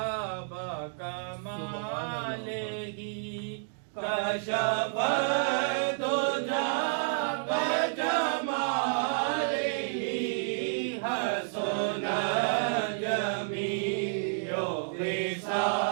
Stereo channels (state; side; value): silent; left; digital silence